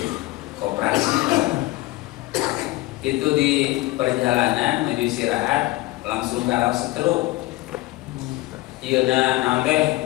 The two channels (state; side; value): quieter; right; 19.3 dB